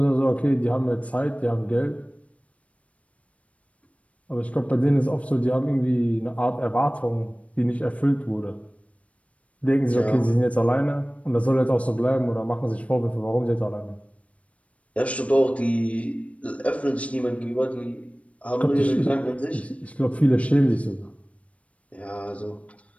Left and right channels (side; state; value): right; late; 0.065 ms